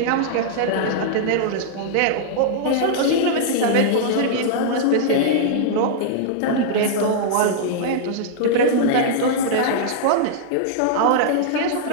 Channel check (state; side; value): different; both; correlation -0.02